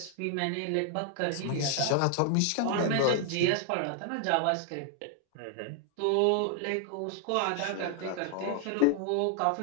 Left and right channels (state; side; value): different; both; correlation 0.00